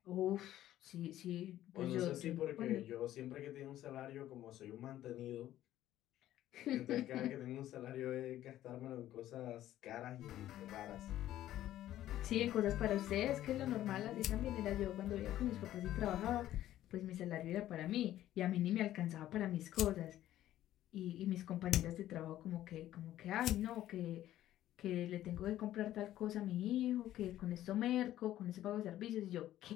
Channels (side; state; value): right; quieter; 13.2 dB